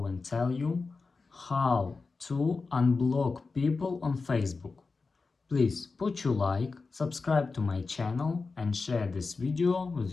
and tell you how to unblock people on Facebook. Please put your like, subscribe to my channel and share this video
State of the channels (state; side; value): quieter; right; 4.2 dB